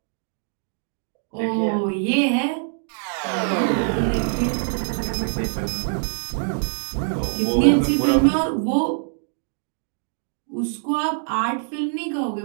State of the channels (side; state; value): left; silent; digital silence